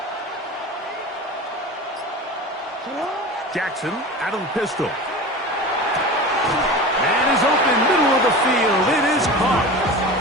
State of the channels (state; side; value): normal; both; correlation 0.32